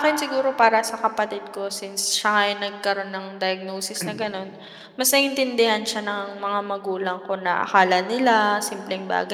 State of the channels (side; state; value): both; identical; correlation 1.00